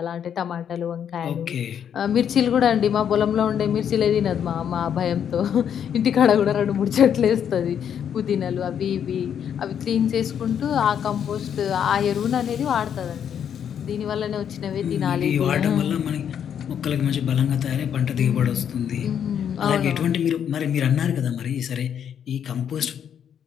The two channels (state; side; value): quieter; right; 8.6 dB